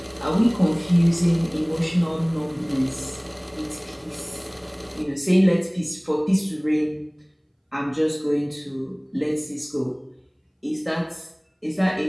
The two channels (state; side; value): identical; both; correlation 1.00